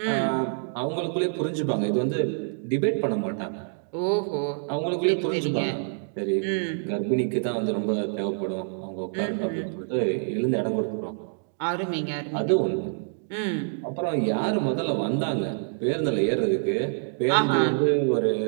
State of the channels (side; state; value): left; silent; digital silence